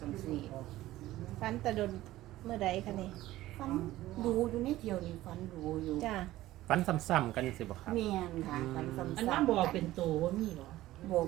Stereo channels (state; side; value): quieter; left; 15.8 dB